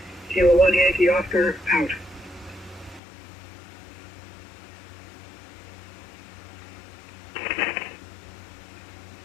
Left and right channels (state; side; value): drops out; right; at 3.0 s